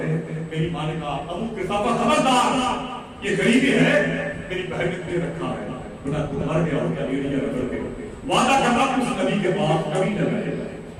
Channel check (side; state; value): both; identical; correlation 1.00